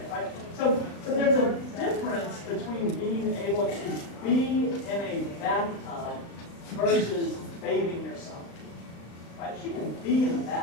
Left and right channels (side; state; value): right; late; 35 ms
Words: right? So there's a difference between being able to be in a bathtub versus bathing yourself, right? She can be in the